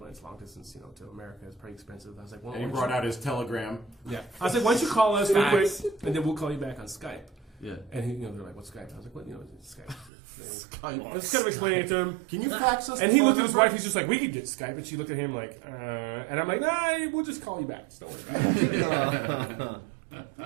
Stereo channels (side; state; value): left; drops out; at 10.1 s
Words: it's long distance, to America. It's pretty expensive. I was like, well, And he why brought don't out his telegram. you- yeah. I was like, why don't you call us real quick, Fax. and then we'll call you back on Skype. Yeah. And they're like, what's Skype? I was like, what? It's Skype. Skype. I was kind of explaining it to him. Can you fax us? And the he phone looked at his number? wife. He's just like, we could get Skype. And she looked at him like, and I'm like, nah, we'll just call you back. Just don't worry about it.